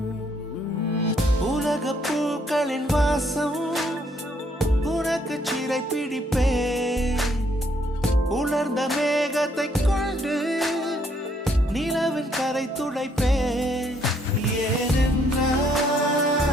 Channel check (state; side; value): normal; both; correlation 0.69